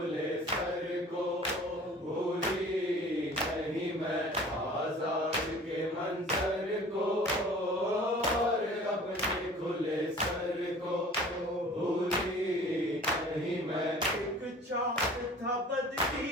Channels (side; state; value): both; normal; correlation 0.46